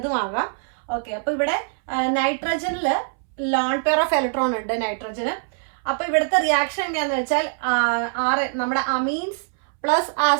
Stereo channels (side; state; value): left; silent; 63 dB below the other